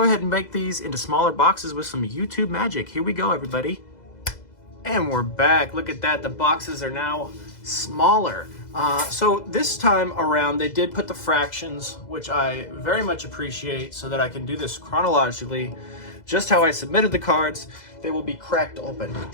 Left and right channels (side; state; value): right; late; 2.0 ms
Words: ahead and make these into smaller boxes with some YouTube magic. Here we go, everybody. And we're back. Look at that. The boxes are now smaller. So this time around, they did put the fractions, which I very much appreciate, so that I can do this chronologically. Just how I submitted the cards, they will be cracked open.